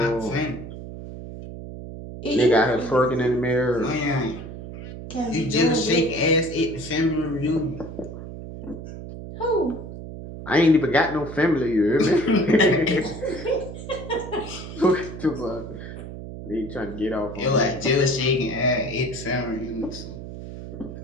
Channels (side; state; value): right; noise; hum, 11 dB below the sound